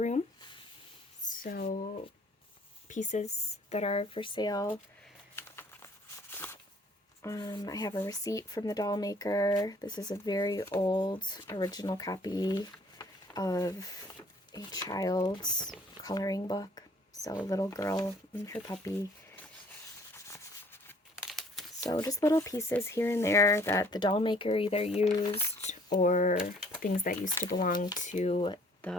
So pieces that are for sale. I have a receipt from the doll maker. This is a very old original copy of a child's coloring book. So a little girl and her puppy. So just little pieces here and there that the doll maker either used or things that used to belong to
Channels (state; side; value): normal; both; correlation 0.57